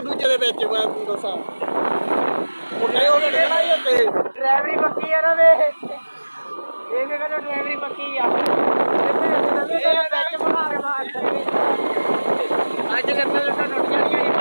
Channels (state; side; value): inverted; both; correlation -1.00